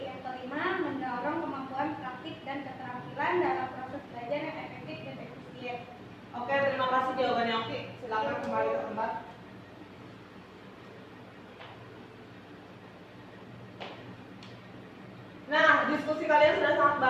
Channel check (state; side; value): identical; both; correlation 1.00